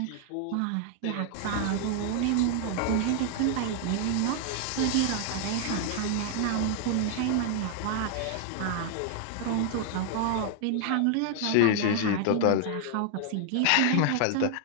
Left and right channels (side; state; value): both; different; correlation 0.00